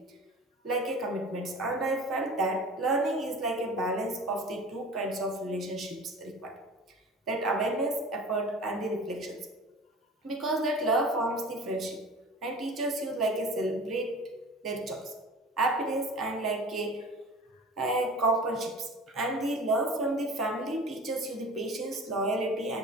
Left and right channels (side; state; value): both; normal; correlation 0.39